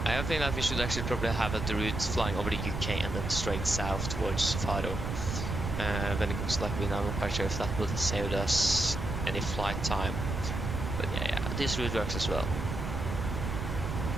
I think that we should actually probably have the route flying over the UK and then straight south towards Faro. When it comes to like, I'm not quite sure if that would save us any flight time, but yeah, this route works as well.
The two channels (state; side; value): noise; right; rumble, 3 dB below the sound